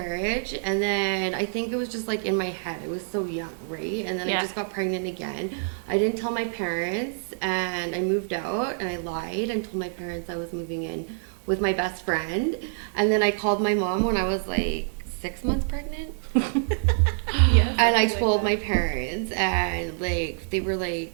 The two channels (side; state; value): left; silent; 61 dB below the other